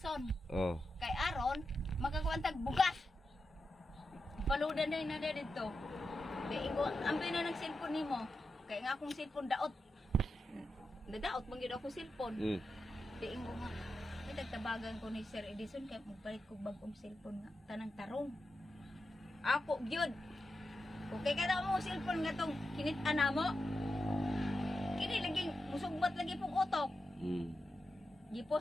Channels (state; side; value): normal; both; correlation 0.89